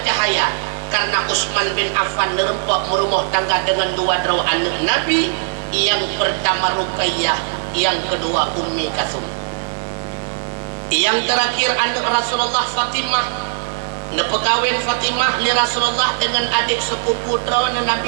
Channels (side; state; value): left; silent; 66 dB below the other